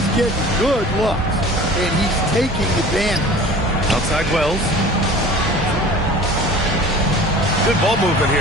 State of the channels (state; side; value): normal; both; correlation 0.43